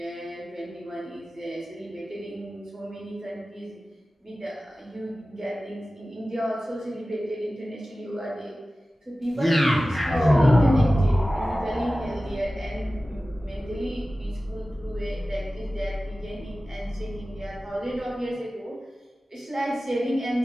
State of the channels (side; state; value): both; normal; correlation 0.96